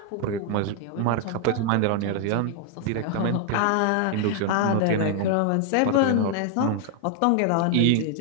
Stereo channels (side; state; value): both; different; correlation 0.00